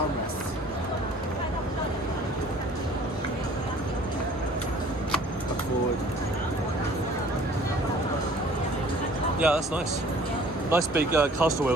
Look forward. Yeah, that's nice. Nice big caster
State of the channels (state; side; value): normal; both; correlation 0.52